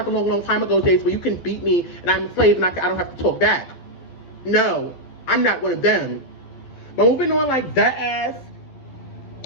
the long time ago days where you can beat me and I'm a slave and I don't have to talk back. No, I'm not one of them. But moving on, like, that ass,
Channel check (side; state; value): right; late; 12 ms